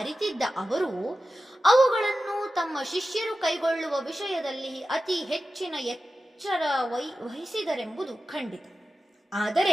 ಅವರು ಅವುಗಳನ್ನು ತಮ್ಮ ಶಿಷ್ಯರು ಕೈಗೊಳ್ಳುವ ವಿಷಯದಲ್ಲಿ ಅತಿ ಹೆಚ್ಚಿನ ಎಚ್ಚರ ವಹಿಸಿದರೆಂಬುದು ಖಂಡಿತ.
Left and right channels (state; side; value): normal; both; correlation 0.93